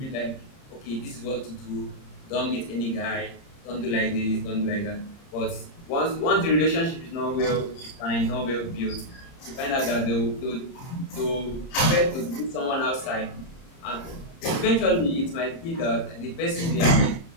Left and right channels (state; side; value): late; right; 30 ms